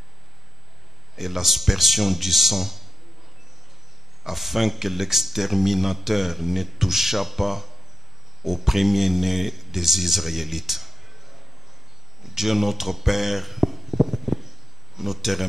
et l'aspersion du sang, afin que l'exterminateur ne touchât pas au premier-né des Israélites. Dieu notre Père, nous te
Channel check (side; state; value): both; normal; correlation 0.88